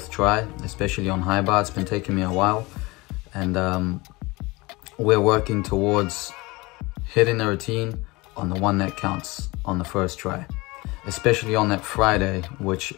try, especially on high bar. It's been taking me a while, and we're working towards hitting the routine on the one that counts on the first try, especially on that Friday, which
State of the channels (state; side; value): quieter; right; 23.1 dB